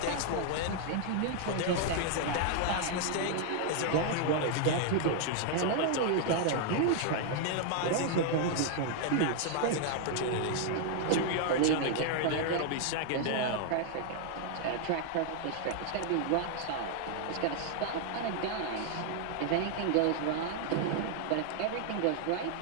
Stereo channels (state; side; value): different; both; correlation 0.00